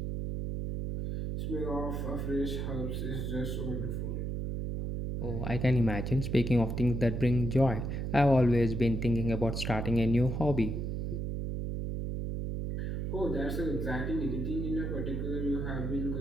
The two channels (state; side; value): noise; right; hum, 2 dB below the sound